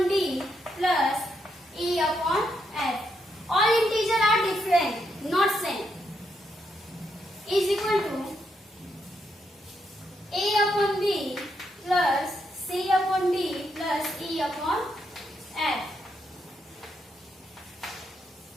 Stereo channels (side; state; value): both; normal; correlation 0.79